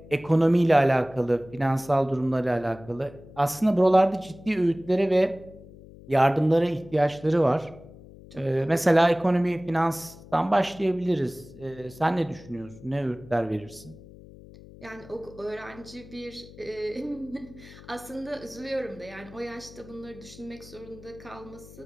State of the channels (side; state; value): left; noise; hum, 19 dB below the sound